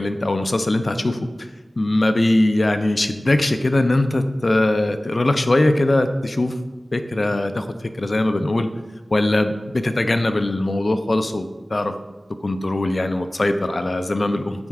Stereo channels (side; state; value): both; normal; correlation 0.98